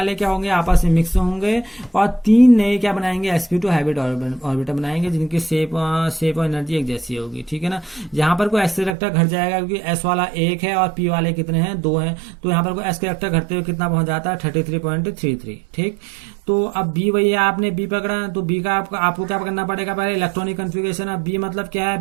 क्या होंगे, आपस में मिक्स होंगे और 3 नए क्या बनाएंगे, sp2 हाइब्रिड ऑर्बिटल बनाएंगे जिनकी शेप और एनर्जी एक जैसी होगी, ठीक है ना। यहाँ पर कोई s करेक्टर घट जाएगा क्योंकि s वाला 1 है और p वाले कितने हैं, 2 हैं। तो यहाँ पर कोई s करेक्टर घटते हुए कितना पहुंच जाता है, 33.33, ठीक। तो अब B वही है, आपने B पकड़ा तो B का आपको क्या करना पड़ेगा, पहले इलेक्ट्रॉनिक कन्फिगरेशन। अब B मतलब क्या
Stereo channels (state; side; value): drops out; left; at 9.0 s